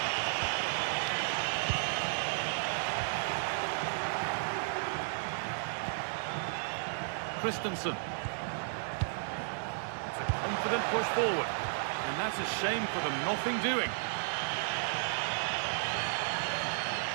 Christensen. It's a confident push forward. And that's a shame for them, nothing doing.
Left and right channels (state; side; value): silent; left; 55 dB below the other